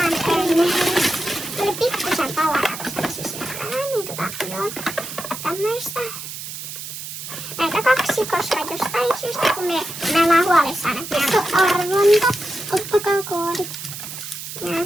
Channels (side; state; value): right; noise; hiss, 9 dB below the sound